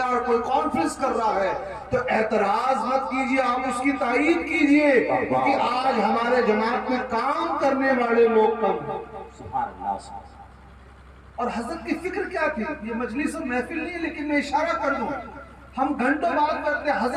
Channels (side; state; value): both; identical; correlation 1.00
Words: کوئی کانفرنس کر رہا ہے تو اعتراض مت کیجیے، آپ اس کی تائید کیجیے، کیونکہ آج ہمارے جماعت میں کام کرنے والے لوگ کم ہیں۔ اور حضرت کی فکر کیا تھی؟ یہ مجلس اور محفل نہیں ہے، لیکن میں اشارہ کر دوں، ہم گھنٹوں بات کرتے ہیں۔